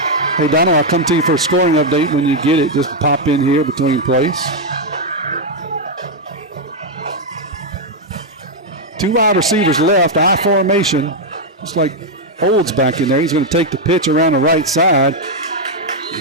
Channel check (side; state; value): both; normal; correlation 0.00